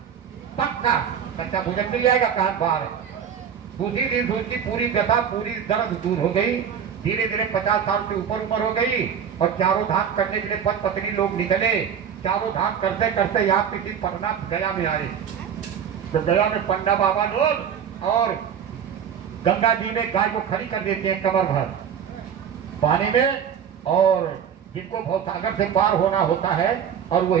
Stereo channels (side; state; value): left; quieter; 8.0 dB